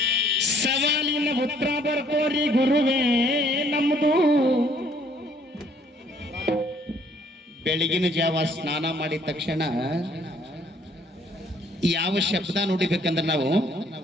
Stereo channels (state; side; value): normal; both; correlation 0.63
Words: ಸವಾಲಿನ ಉತ್ತರ ಬರ್ಕೋರಿ ಗುರುವೇ ನಮ್ಮದು. ಬೆಳಗಿನ ಜಾವ ಸ್ನಾನ ಮಾಡಿದ ತಕ್ಷಣ ಯಾವ ಶಬ್ದ ನೋಡಿಬೇಕಂದ್ರೆ ನಾವು